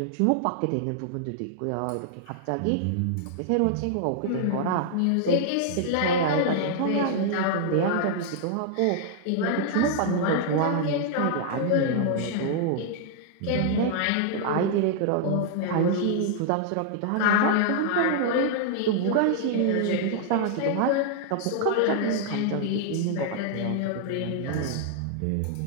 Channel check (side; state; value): both; different; correlation -0.01